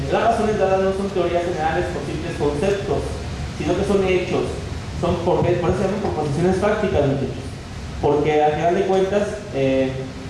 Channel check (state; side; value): identical; both; correlation 1.00